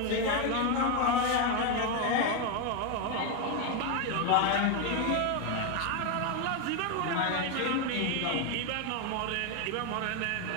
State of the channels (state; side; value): different; both; correlation 0.02